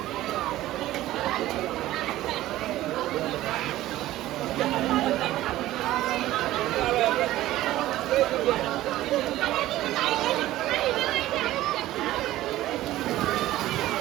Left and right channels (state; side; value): quieter; left; 15.3 dB